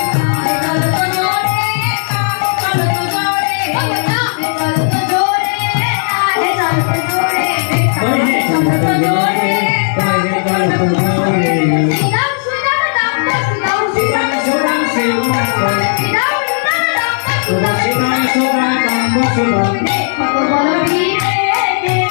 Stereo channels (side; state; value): right; silent; digital silence